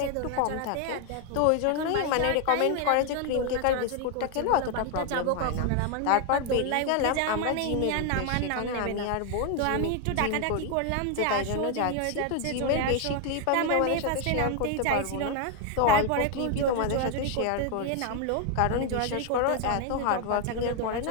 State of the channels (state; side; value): different; both; correlation 0.00